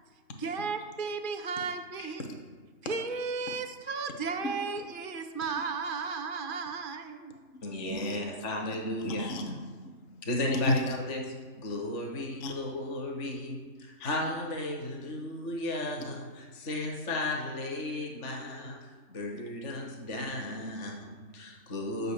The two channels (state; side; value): late; right; 3.4 ms